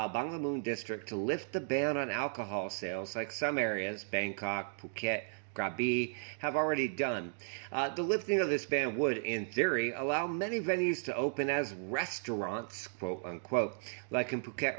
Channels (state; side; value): silent; left; digital silence